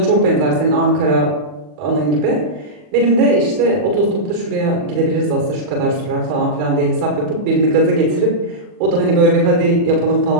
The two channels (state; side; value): late; left; 40 ms